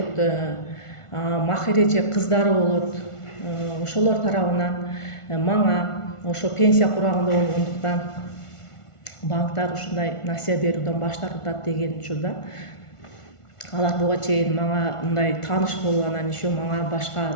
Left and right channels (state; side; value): late; right; 1.4 ms